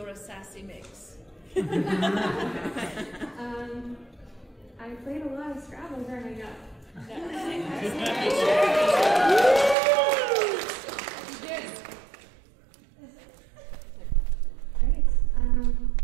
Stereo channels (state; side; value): drops out; left; at 9.8 s